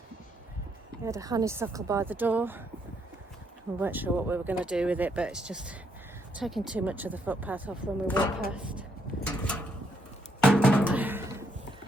We had a honeysuckle by the door. We weren't sure what we were going to do with it, but it's just taking too much of the footpath off when we walk past.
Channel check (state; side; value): normal; both; correlation 0.74